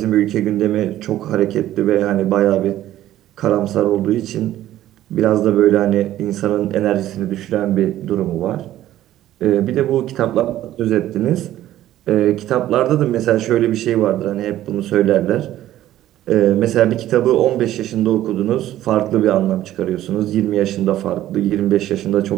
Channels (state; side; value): quieter; left; 13.5 dB